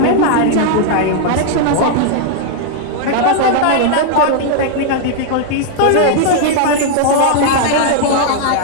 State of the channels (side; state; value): both; different; correlation 0.00